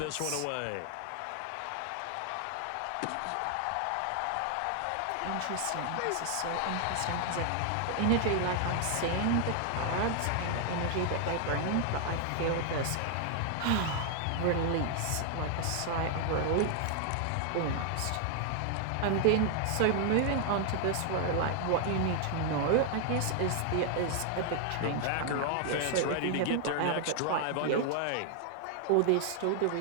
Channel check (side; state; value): both; different; correlation 0.00